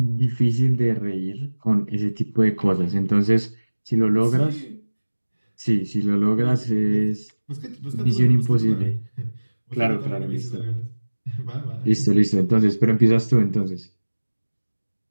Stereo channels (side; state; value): both; inverted; correlation -1.00